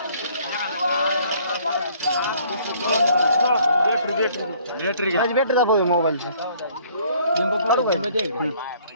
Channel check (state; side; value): inverted; both; correlation -0.59